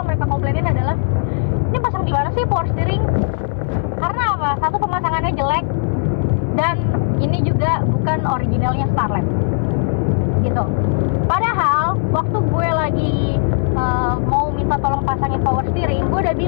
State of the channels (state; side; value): silent; right; 61 dB below the other